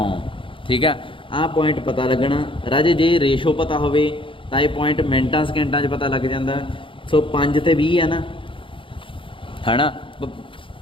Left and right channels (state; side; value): late; right; 0.25 ms